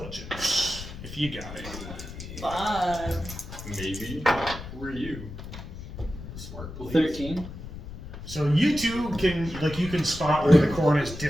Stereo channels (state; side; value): noise; left; rumble, 11 dB below the sound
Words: if you got it. 5. Maybe. Who are you? Smart police. 13. So you two you can spot where the corn is